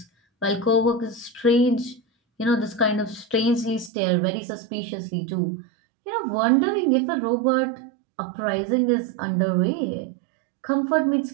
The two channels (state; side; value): drops out; left; at 3.9 s